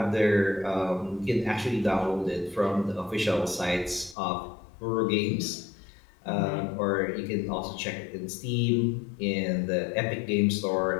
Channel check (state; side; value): drops out; right; at 4.2 s